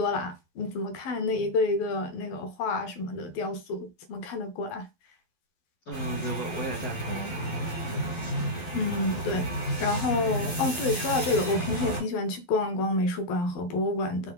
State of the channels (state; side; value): late; right; 12 ms